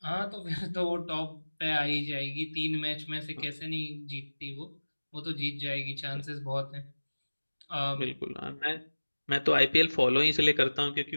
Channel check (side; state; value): both; inverted; correlation -1.00